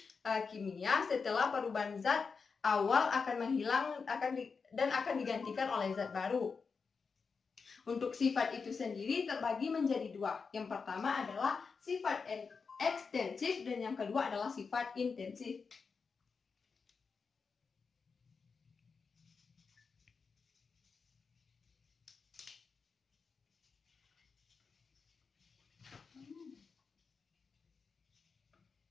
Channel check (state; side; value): quieter; right; 5.2 dB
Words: kimia setelah perubahan zat awal akan menghilang dan akan digantikan oleh zat baru. Untuk sifat itu sendiri terbagi menjadi dua. Yang pertama adalah sifat ekstensif dan yang kedua adalah sifat intensif.